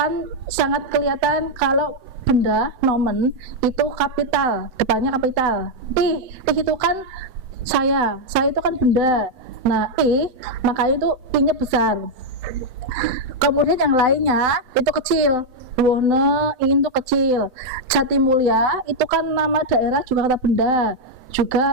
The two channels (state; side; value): late; left; 7.9 ms